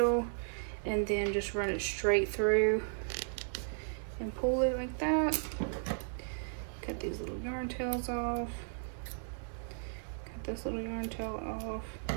and then just run it straight through and pull it like that. Cut these little yarn tails off. Cut this little yarn tail off.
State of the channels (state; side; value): silent; left; digital silence